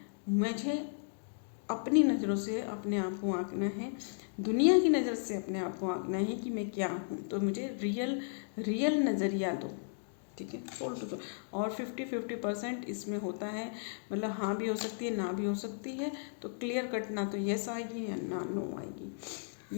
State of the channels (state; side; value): silent; right; digital silence